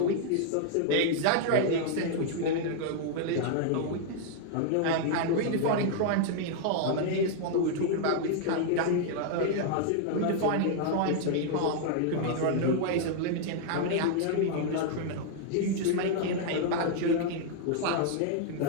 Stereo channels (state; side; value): different; both; correlation 0.00